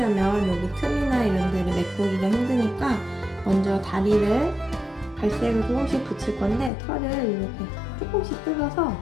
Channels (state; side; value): drops out; right; at 6.7 s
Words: 여기 틈이나 이런 데를 메꾸기가 힘드니까 먼저 다리를 갈색을 조금씩 붙일 건데 털을 이렇게 조금씩 뜯어서